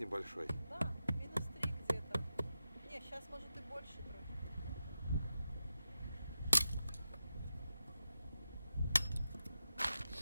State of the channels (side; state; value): both; inverted; correlation -0.90